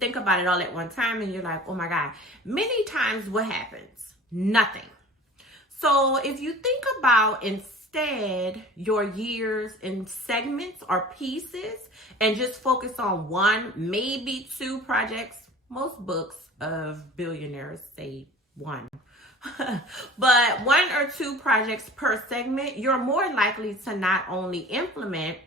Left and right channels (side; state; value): both; normal; correlation 0.42